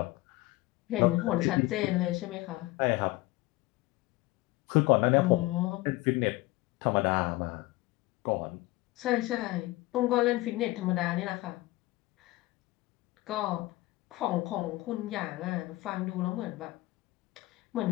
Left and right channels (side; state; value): right; quieter; 19.6 dB